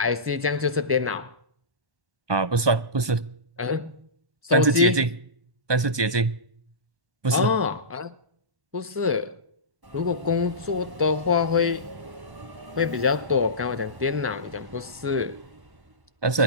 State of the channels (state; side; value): late; left; 1.2 ms